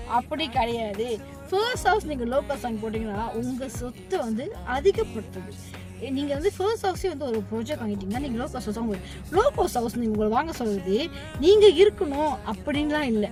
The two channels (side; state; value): both; identical; correlation 1.00